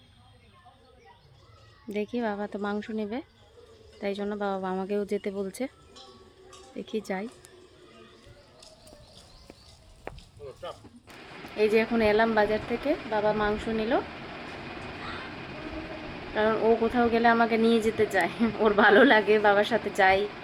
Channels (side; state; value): both; identical; correlation 1.00